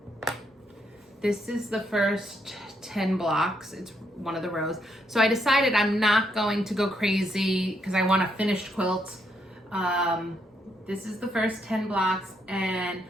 This is the first 10 blocks. It's one of the rows. So I decided I'm not going to go crazy because I want a finished quilt. This is the first 10 blocks, and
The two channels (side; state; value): both; normal; correlation 0.76